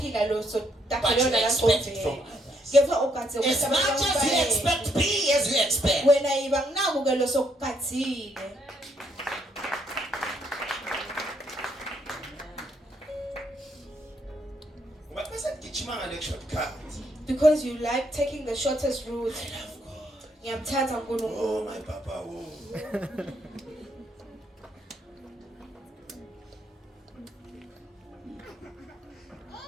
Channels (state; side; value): normal; both; correlation 0.73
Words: lo But sotakhele you yona expect it from langqondweni. others. Kepha ugadze As ukuthi much abantu as you bayeke. expect, be as you expect. Wena yiba nginaku ke lo sokugadzile. But person gijima ngale shortcut. Because you like taking the shortest route. I love God. Ngiyamthanda uNkulunkulu. Oh my Papa, oh.